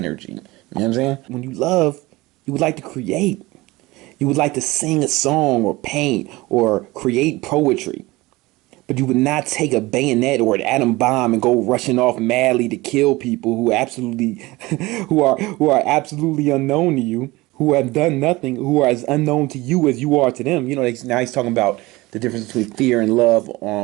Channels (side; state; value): left; quieter; 20.8 dB